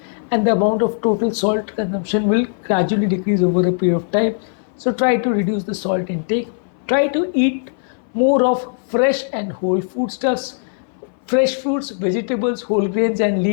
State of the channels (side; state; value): right; silent; 60 dB below the other